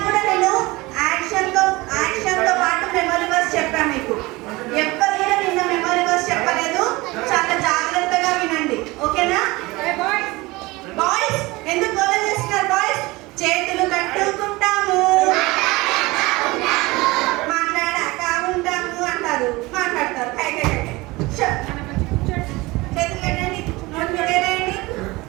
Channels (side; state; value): left; quieter; 21.9 dB